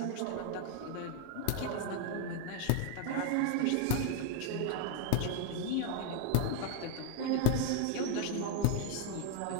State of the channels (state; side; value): different; both; correlation 0.00